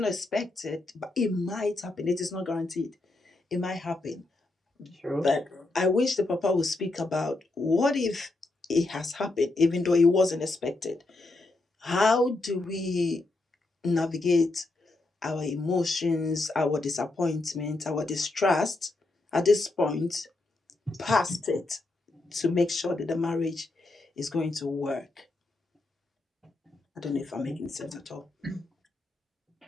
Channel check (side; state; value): right; quieter; 3.0 dB